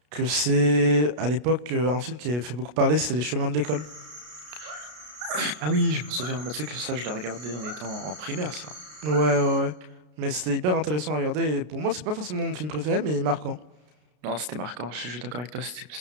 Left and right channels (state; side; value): late; left; 33 ms